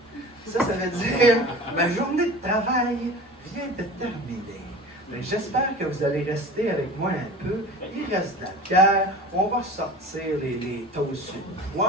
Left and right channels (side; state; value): both; normal; correlation 0.37